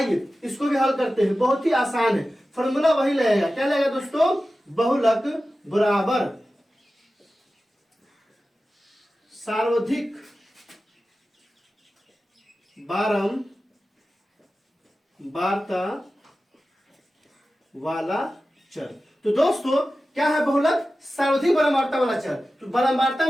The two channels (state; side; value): normal; both; correlation 0.94